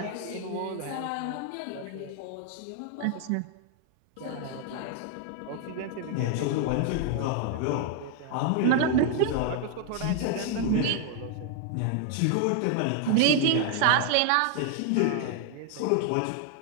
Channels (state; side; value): different; both; correlation 0.00